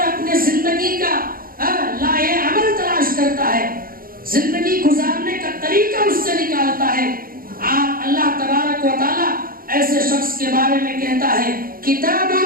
اپنے زندگی کا لائے عمل تلاش کرتا ہے، زندگی گزارنے کا طریقہ اس سے نکالتا ہے۔ اللہ تبارک و تعالیٰ ایسے شخص کے بارے میں کہتا ہے کتاب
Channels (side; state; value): left; late; 0.42 ms